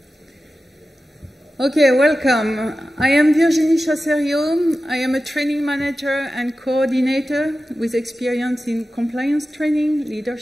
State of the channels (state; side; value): normal; both; correlation 0.94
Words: Okay, welcome. I am Virginie Chasserio. I am a training manager and coordinator with experience in compliance training,